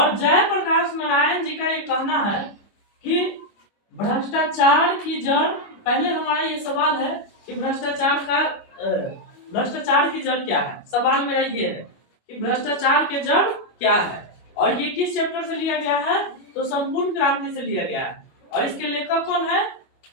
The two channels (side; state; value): right; late; 25 ms